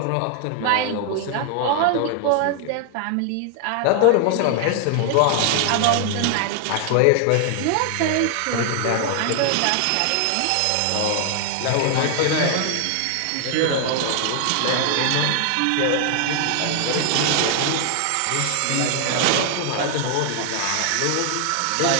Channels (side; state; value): both; different; correlation 0.00